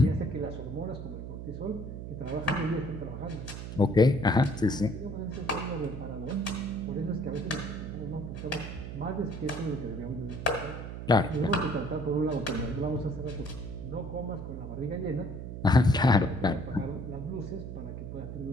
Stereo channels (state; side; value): noise; right; hum, 7 dB below the sound